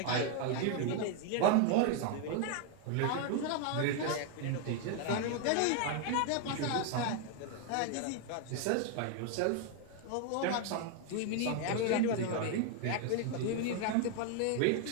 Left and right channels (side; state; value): both; different; correlation 0.01